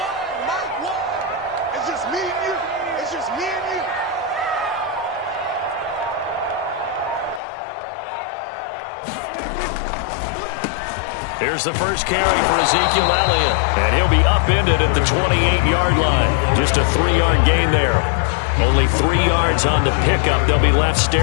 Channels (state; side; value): drops out; right; at 7.4 s